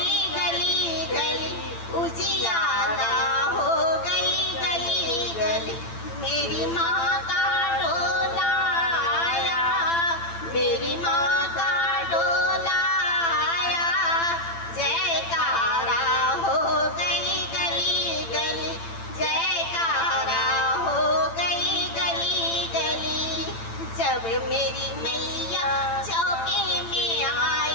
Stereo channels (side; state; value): right; late; 8.9 ms